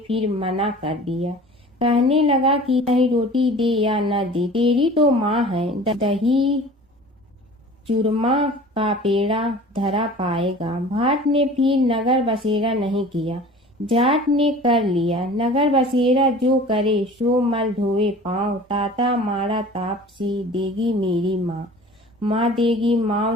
मना कर दिया। कहने लगा कि चाहे रोटी दे या न दे, तेरी तो माँ है, दही चूरमा का पेड़ा धरा पाएगा। भाट ने फिर नगर बसेरा नहीं किया, जाट ने कर लिया। नगर बसेरा जो करे सो मल धोए पाँव, ताता माड़ा तापसी देगी मेरी माँ, माँ देगी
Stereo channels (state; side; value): normal; both; correlation 0.43